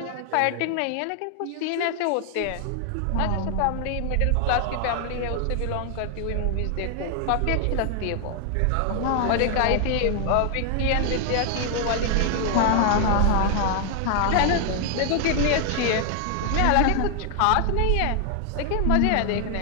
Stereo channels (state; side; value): different; both; correlation 0.00